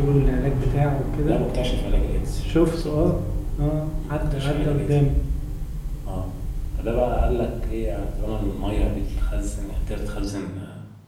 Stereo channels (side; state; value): both; identical; correlation 1.00